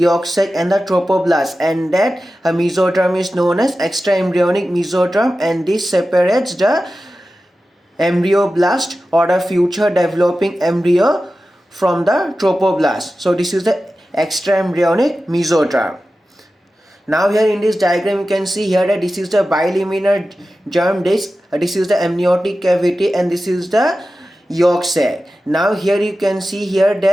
sac and the trophoblast, and that a mesoderm is known as extraembryonic mesoderm, and this separates the embryoblast or the future developing embryo from the trophoblast. So this is the extraembryonic mesoderm. Now here in this diagram you can see here that this is the bilaminar germ disc, this is the amniotic cavity, and this is the yolk sac. Now here you can see here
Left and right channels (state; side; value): normal; both; correlation 0.94